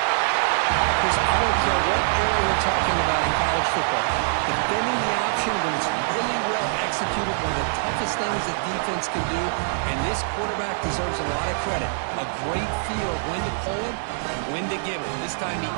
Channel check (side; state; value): left; silent; digital silence